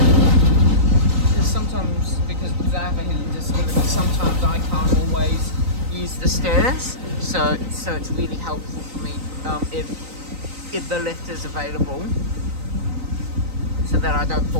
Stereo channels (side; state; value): left; late; 3.9 ms